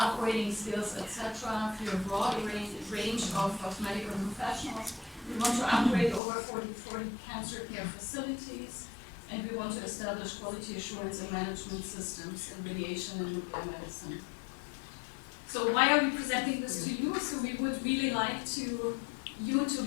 skills, etc. for a broad range of medical professionals. We want to upgrade over 40 cancer care facilities, and we want to establish quality assurance and management systems in radiation and nuclear medicine. So why are we presenting this to you? So we would really like you to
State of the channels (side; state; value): right; drops out; at 6.2 s